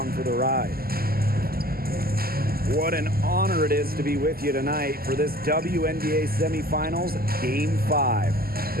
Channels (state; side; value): late; left; 0.43 ms